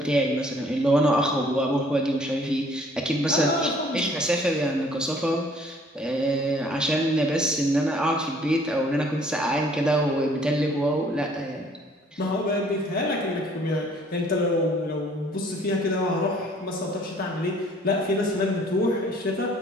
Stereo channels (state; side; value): normal; both; correlation 0.58